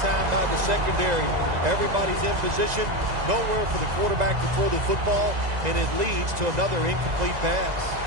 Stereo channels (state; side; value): late; left; 2.0 ms